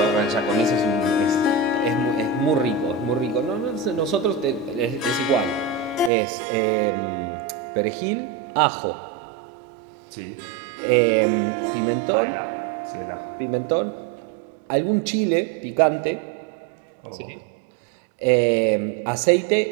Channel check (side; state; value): left; drops out; at 6.1 s